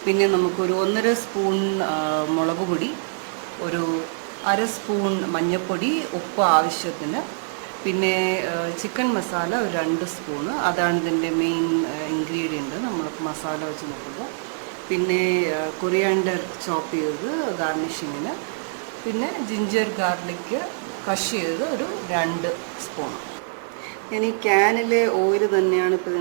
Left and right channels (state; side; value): silent; left; 63 dB below the other